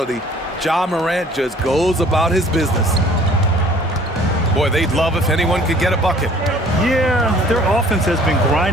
Ja Morant just goes about his business. Boy, they'd love if anyone could get a bucket. Yeah, their offense has been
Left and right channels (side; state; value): both; normal; correlation 0.53